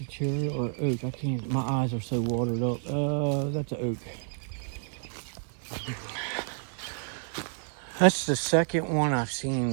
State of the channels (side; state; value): left; silent; 56 dB below the other